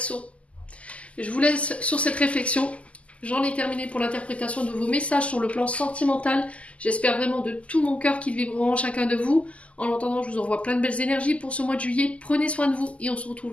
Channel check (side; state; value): right; late; 0.064 ms